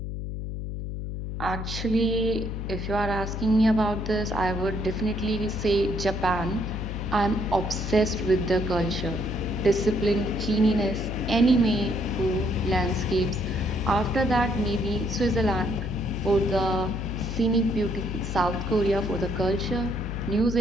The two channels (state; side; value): noise; left; hum, 5 dB below the sound